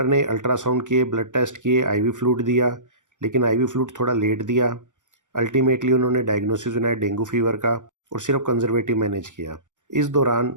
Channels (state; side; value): late; left; 0.87 ms